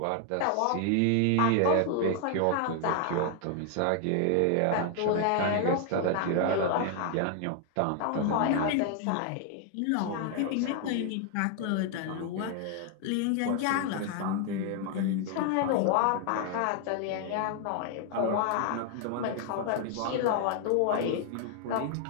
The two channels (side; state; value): both; different; correlation 0.00